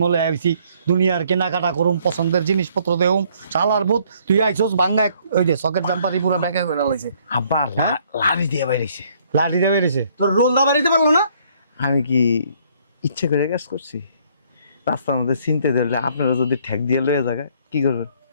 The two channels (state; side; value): inverted; both; correlation -0.64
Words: মলে আইছি, দুনিয়ার কেনাকাটা করুম, পছন্দের জিনিসপত্র দেউম, চালার বুত, তুই আইছস ভাঙ্গা ওই যে সকেট জাম্পারি পুরো ব্যাগে করে লাইছে, আব্বা লাড়ি দিয়ে বাইরেছে। লাঠি দিয়ে বেরিয়েছে। তোর রোল দা বাড়িতে পারলো না? আমি কি ইচ্ছে করে কাজ করছি? রাস্তার মধ্যে চিনতে ধরলে আপনারা যদি ঠেক দিয়ে লয়ে যাবে কি করবেন?